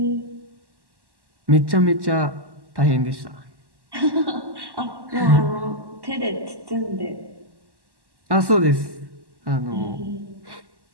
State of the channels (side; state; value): left; late; 1.1 ms